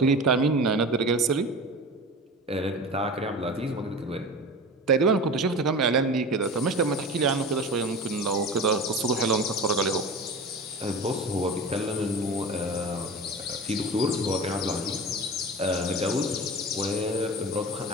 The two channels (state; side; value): normal; both; correlation 0.33